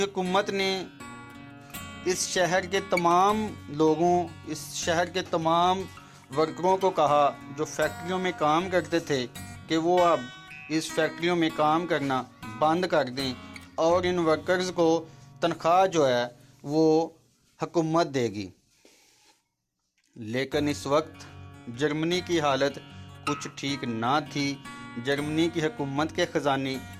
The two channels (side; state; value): both; identical; correlation 1.00